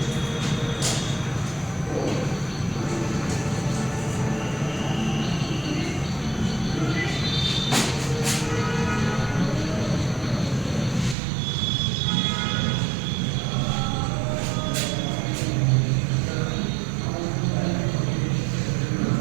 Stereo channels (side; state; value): left; drops out; at 11.2 s